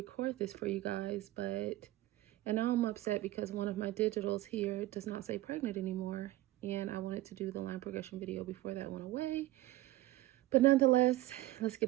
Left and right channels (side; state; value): left; quieter; 16.8 dB